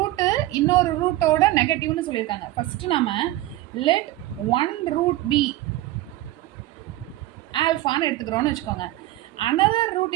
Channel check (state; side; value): quieter; left; 16.2 dB